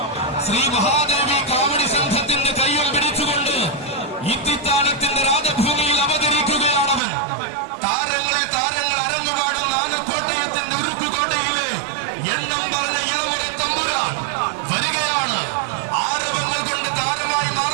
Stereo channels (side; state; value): left; drops out; at 7.0 s